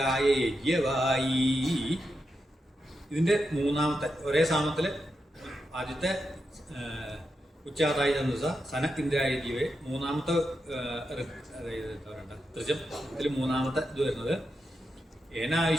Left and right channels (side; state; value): both; normal; correlation 0.87